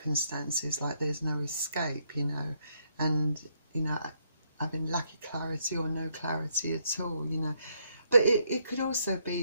like there's no escape, you know, and, you know, having lack of clarity or no clarity at all, you know. But it could also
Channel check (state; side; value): inverted; both; correlation -0.74